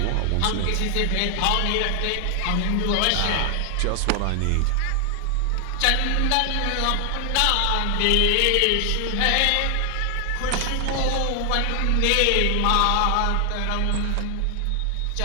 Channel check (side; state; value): both; different; correlation 0.00